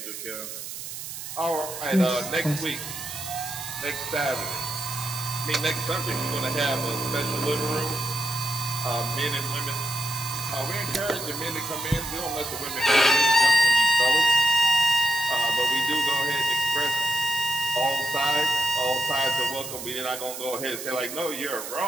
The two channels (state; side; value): noise; right; hiss, 9 dB below the sound